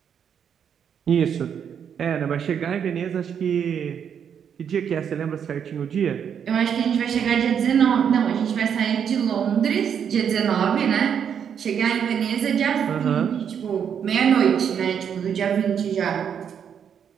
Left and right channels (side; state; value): left; quieter; 7.9 dB